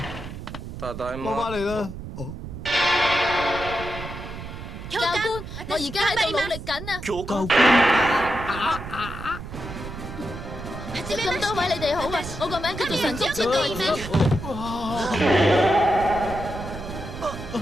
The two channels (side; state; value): right; noise; rumble, 10 dB below the sound